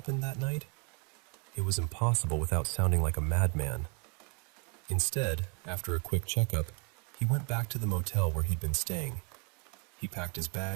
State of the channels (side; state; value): left; quieter; 34.6 dB